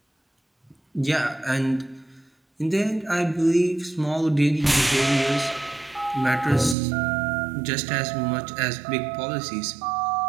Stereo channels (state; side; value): drops out; left; at 6.8 s